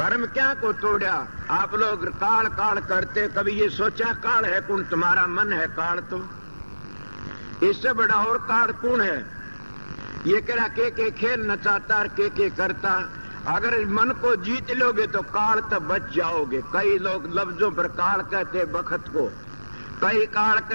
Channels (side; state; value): both; inverted; correlation -1.00